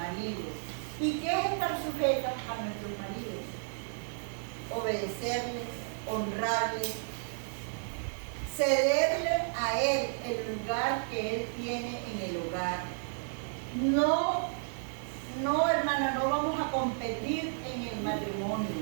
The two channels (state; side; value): silent; left; digital silence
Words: ¿Y qué es estar sujetas a nuestros maridos? Obedecerles, honrarles, cederle a él el lugar que él tiene en el hogar. No, hermana, no vamos a competir en el matrimonio.